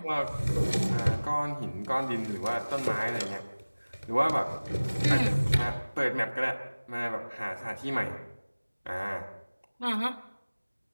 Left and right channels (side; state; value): both; inverted; correlation -1.00